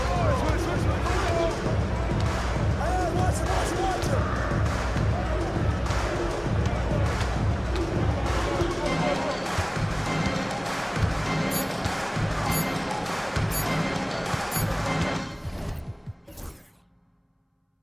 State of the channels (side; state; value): both; identical; correlation 1.00